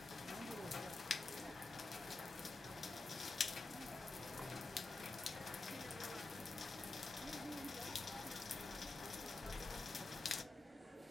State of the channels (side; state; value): right; quieter; 3.3 dB